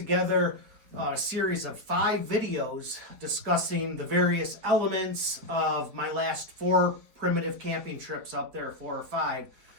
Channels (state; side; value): late; left; 4.5 ms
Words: a series of 5 videos discussing the various elements of my last 4 primitive camping trips up there, 4 or 5.